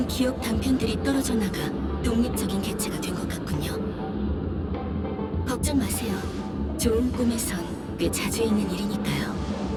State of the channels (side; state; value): both; identical; correlation 1.00